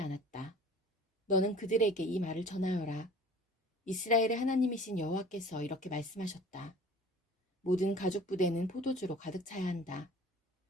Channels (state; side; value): normal; both; correlation 0.47